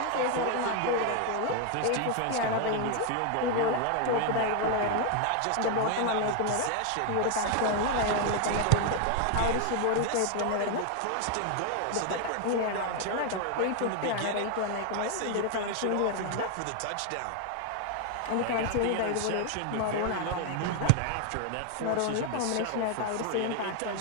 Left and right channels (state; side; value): different; both; correlation 0.01